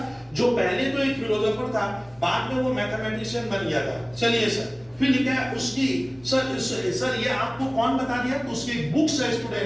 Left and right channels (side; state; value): right; noise; rumble, 30 dB below the sound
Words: जो पहले तो एक फिलोसोफर था, बाद में वो मैथमेटिशियन बन गया था। चलिए सर, फिर लिखा है उसकी सर ये आपको कौन बता दिया? तो उसकी बुक्स है